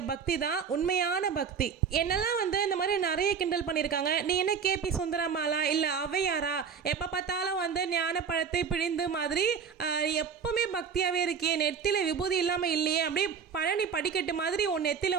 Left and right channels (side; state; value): left; quieter; 6.5 dB